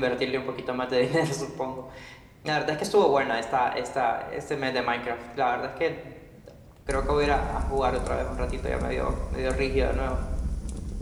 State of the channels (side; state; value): both; identical; correlation 1.00